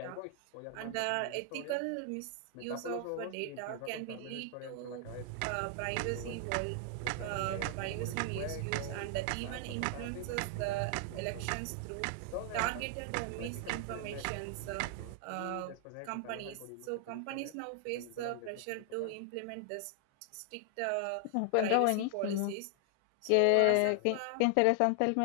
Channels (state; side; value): different; both; correlation 0.00